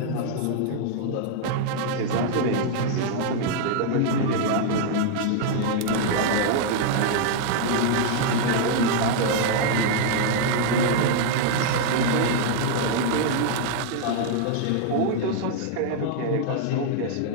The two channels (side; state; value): both; different; correlation 0.00